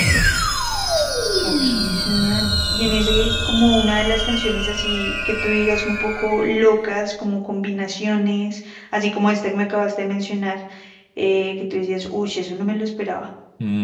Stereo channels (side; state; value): both; identical; correlation 1.00